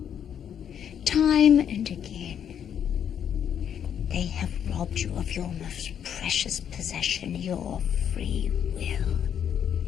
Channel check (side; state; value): right; quieter; 8.8 dB